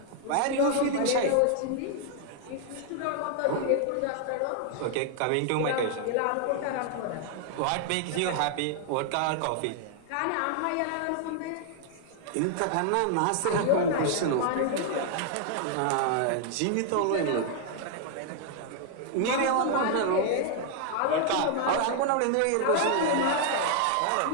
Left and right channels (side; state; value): both; different; correlation 0.00